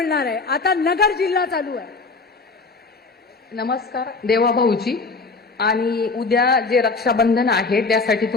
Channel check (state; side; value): quieter; right; 4.0 dB